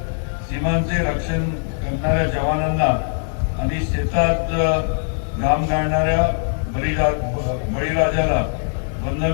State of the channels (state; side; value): silent; right; 65 dB below the other